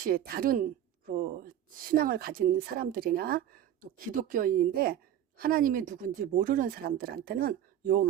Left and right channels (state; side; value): quieter; left; 10.9 dB